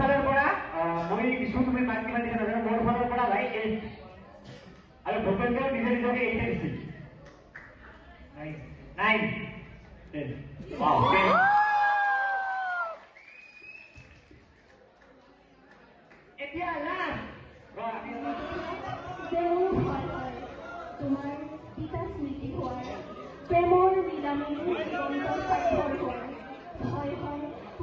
পৰা মই কিছু তুমি মাক কিমান দিছা নাজানো মোৰ ফালৰ পৰা ভাই 8 আৰু ভূপেন্দ্ৰ নিজে নিজকে 8 দিছিল 9 10 wow এতিয়া লাষ্ট তোমাৰ পিতা স্মৃতি হোৱাৰ প্ৰেমৰ লীলাময়ী হয় হয়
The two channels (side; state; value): both; identical; correlation 1.00